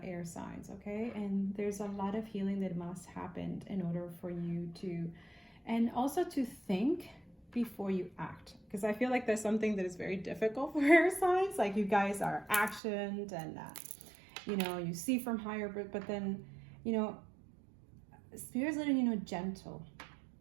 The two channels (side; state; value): left; drops out; at 12.8 s